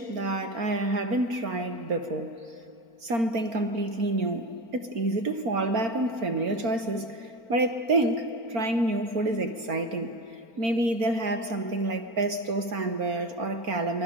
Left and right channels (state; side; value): late; left; 4.4 ms